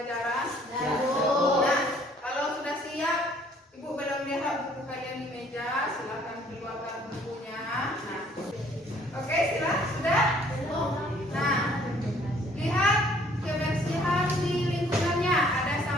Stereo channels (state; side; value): normal; both; correlation 0.60